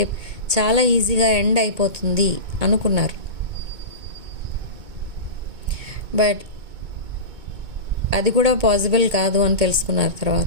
చాలా ఈజీగా ఎండ్ అయిపోతుంది అనుకున్నారు. బట్ అది కూడా పాసిబుల్ కాదు అని తెలుసుకున్నారు.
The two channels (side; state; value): left; late; 2.2 ms